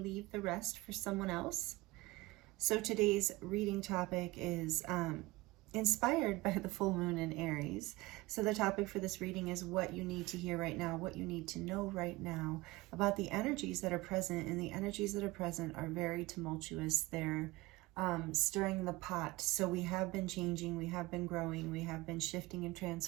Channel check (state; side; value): quieter; left; 20.9 dB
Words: leave the rest for someone else. So today's reading topic is inspired by the full moon in Aries. So the topic for this reading is what you need to hear right now, what you need to know right now about the energies that are present. And the energies that are present are very tumultuous. They're stirring the pot. So we have been changing, we have been growing, we have been shifting and